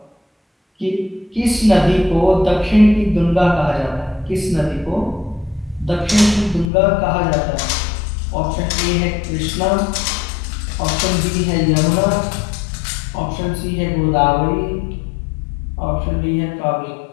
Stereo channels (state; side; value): drops out; right; at 6.7 s